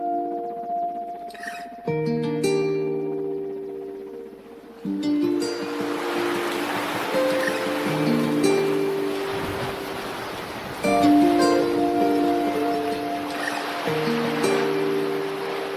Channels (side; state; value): both; identical; correlation 1.00